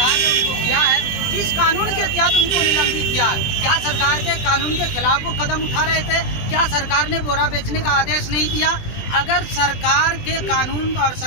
ने उनको किया है। किस कानून के तहत उनको निलंबित किया? क्या सरकार के कानून के खिलाफ वो कदम उठा रहे थे? क्या सरकार ने बोरा बेचने का आदेश नहीं दिया? अगर सरकार के कानून और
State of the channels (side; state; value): right; late; 20 ms